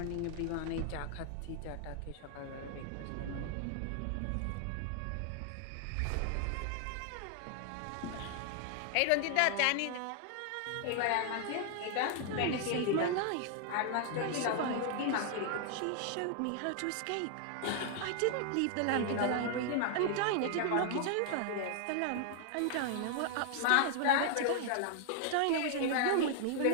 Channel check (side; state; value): both; different; correlation 0.00